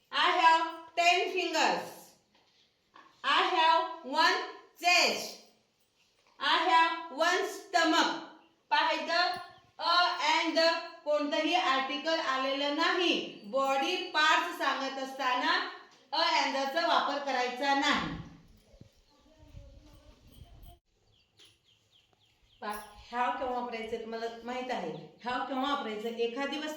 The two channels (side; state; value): both; identical; correlation 1.00